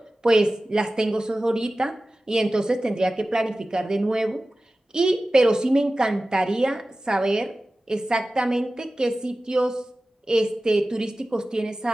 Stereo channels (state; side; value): normal; both; correlation 0.96